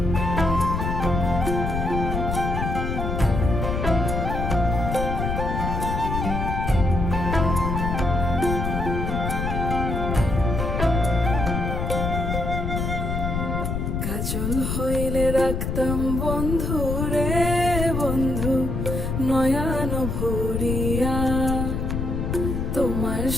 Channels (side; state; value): left; noise; rumble, 2 dB below the sound